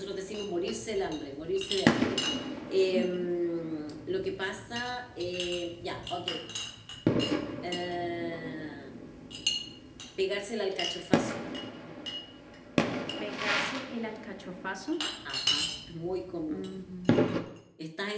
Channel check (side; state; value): both; identical; correlation 1.00